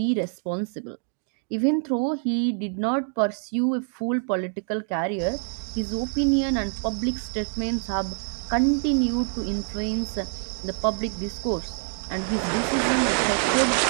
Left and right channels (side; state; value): left; silent; 61 dB below the other